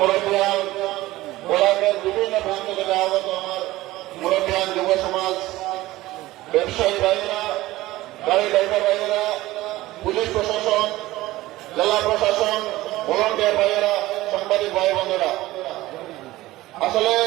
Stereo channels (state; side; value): quieter; left; 17.5 dB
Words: গোলাপের বিভিন্ন প্রান্ত থেকে আগত আমার মুরব্বিয়ান যুব সমাজ, ব্যবসায়ী ভাইয়েরা, গাড়ি ড্রাইভার ভাইয়েরা, পুলিশ প্রশাসন, জেলা প্রশাসন, ভলান্টিয়ার ভাইয়েরা, সাংবাদিক ভাই বোনেরা, আসলে